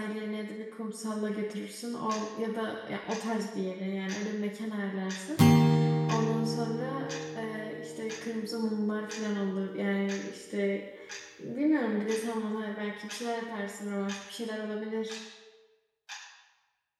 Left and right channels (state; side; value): identical; both; correlation 1.00